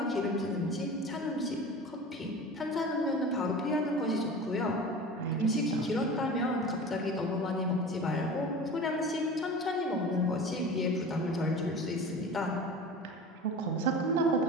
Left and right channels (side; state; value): both; normal; correlation 0.36